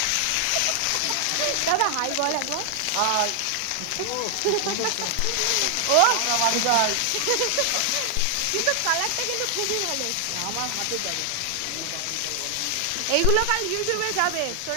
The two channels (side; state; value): both; different; correlation 0.00